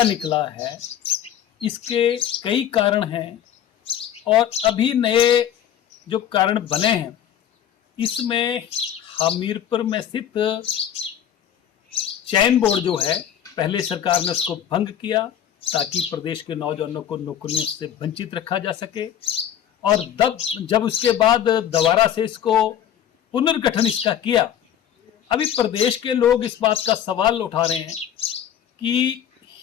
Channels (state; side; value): quieter; right; 10.0 dB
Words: निकला है, इसके कई कारण हैं और अभी नए जो कारण बने हैं, इसमें हमीरपुर में स्थित चयन बोर्ड जो है, पहले सरकार ने उसको भंग किया ताकि प्रदेश के नौजवानों को नौकरियों से वंचित रखा जा सके, और जब उसके बाद दोबारा से इसको पुनर्गठन इसका किया। अभी प्रदेश के लोग इस बात का सवाल उठा रहे हैं कि